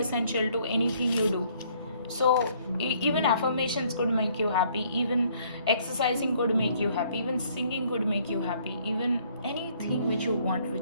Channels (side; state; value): both; inverted; correlation -0.63